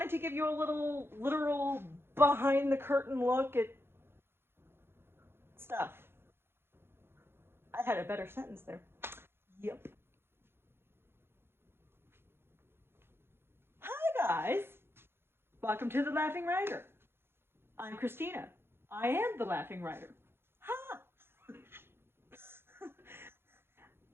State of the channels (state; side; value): late; left; 0.11 ms